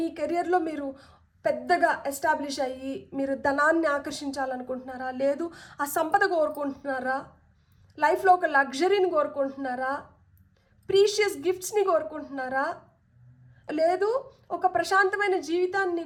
కెరియర్లో మీరు పెద్దగా ఎస్టాబ్లిష్ అయ్యి మీరు ధనాన్ని ఆకర్షించాలనుకుంటున్నారా? లేదు ఆ సంపద కోరుకుంటున్నారా? లైఫ్లో ఒక లగ్జరీని కోరుకుంటున్నారా? ప్రీషియస్ గిఫ్ట్స్ని కోరుకుంటున్నారా? లేదు ఒక ప్రశాంతమైన జీవితాన్ని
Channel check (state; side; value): identical; both; correlation 1.00